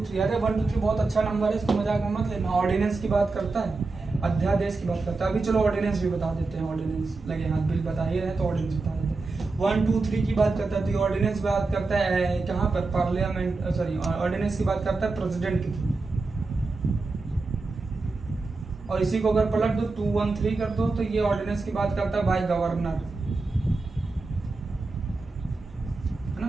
3, अरे 1 2 3 बहुत अच्छा नंबर है, इसको मजाक में मत लेना। ऑर्डिनेंस की बात करता है, अध्यादेश की बात करता है। अभी चलो ऑर्डिनेंस भी बता देते हैं, ऑर्डिनेंस लगे हाथ बिल बता ही रहे तो ऑर्डिनेंस बता देते हैं। 1 2 3 की बात करता है तो ऑर्डिनेंस बात करता है कहाँ पर, पार्लियामेंट, सॉरी ऑर्डिनेंस की बात करता है प्रेसिडेंट के थ्रू। और इसी को अगर पलट दो 2 1 3 कर दो तो ये ऑर्डिनेंस की बात करता है भाई गवर्नर, है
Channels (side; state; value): left; quieter; 3.7 dB